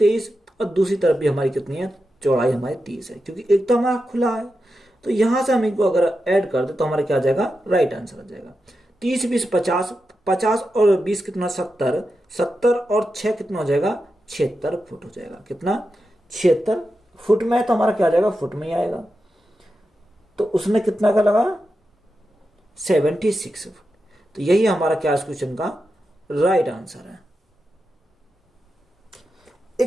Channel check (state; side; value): normal; both; correlation 0.89